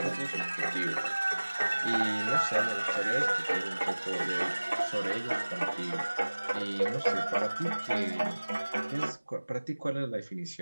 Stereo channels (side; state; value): both; inverted; correlation -1.00